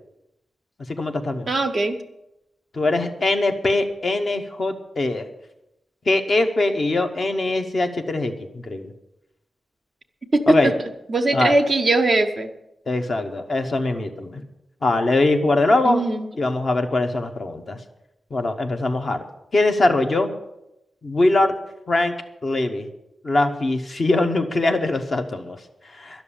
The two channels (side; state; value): both; normal; correlation 0.90